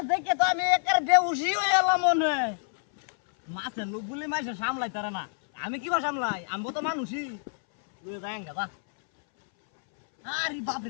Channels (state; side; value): silent; right; 60 dB below the other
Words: দেখে তো আমি একের বেউসি হয়ে এলাম মনে মাছের লোক বলে মাছ সামলাই তারা না আমি কিবা সামলাই আমি তো মানুষই লয়ে যাই গাদা আরে বাপ